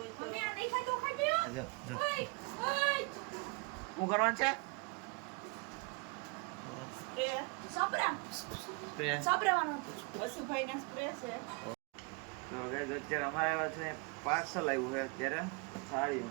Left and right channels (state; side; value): quieter; left; 31.6 dB